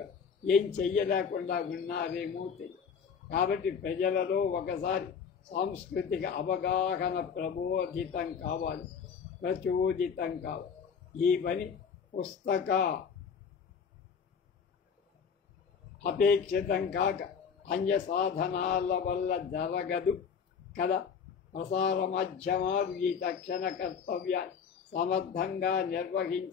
ఏం చెయ్యలేకుండా ఉన్నారేమో తెలియదు. కాబట్టి ప్రజలలో ఒకసారి సాంస్కృతిక అవగాహన ప్రచోదితం కావాలి. ఈ పని పుస్తక అపేక్షితం కాక అన్య సాధనాల వల్ల జరగదు కదా. ప్రసార మాధ్యమాలు ఈ తక్షణ కర్తవ్యాన్ని సమర్థంగా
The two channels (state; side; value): quieter; right; 6.5 dB